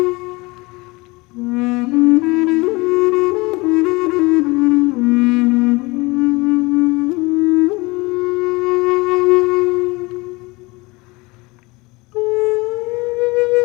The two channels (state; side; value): quieter; right; 24.1 dB